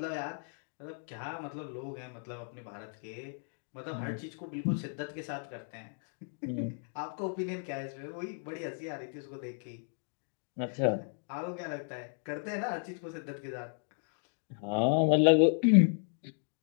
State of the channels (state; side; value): silent; right; 55 dB below the other